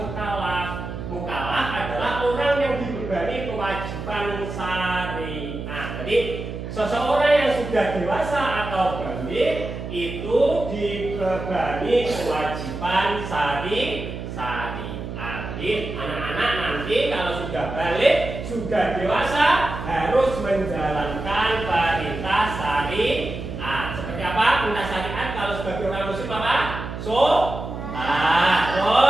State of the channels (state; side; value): noise; right; hum, 7 dB below the sound